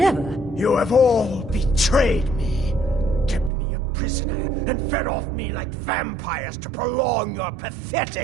You have all betrayed me, kept me a prisoner, and fed off me like vampires to prolong your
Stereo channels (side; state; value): left; drops out; at 3.5 s